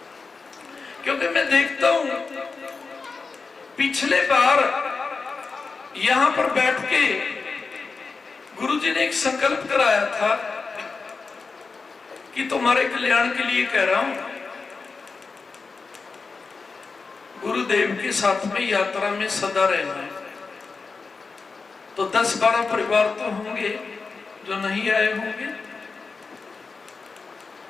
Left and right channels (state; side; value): quieter; right; 4.5 dB